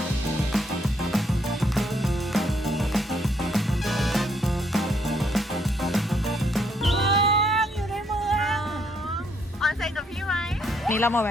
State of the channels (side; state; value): both; normal; correlation 0.71